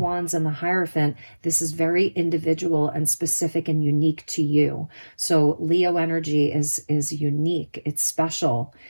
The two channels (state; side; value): inverted; both; correlation -1.00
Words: and the Hierophant, this is very individual and specific and unique to you. So Leo energy is unique. It's special.